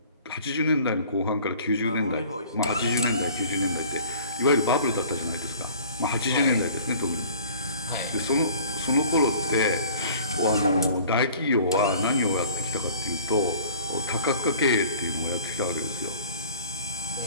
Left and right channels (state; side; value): inverted; both; correlation -0.48